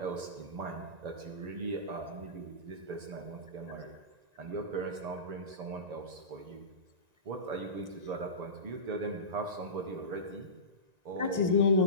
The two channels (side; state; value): left; late; 1.9 ms